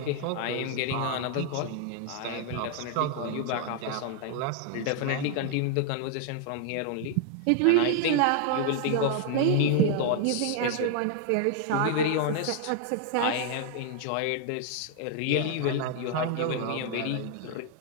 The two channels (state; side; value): different; both; correlation 0.00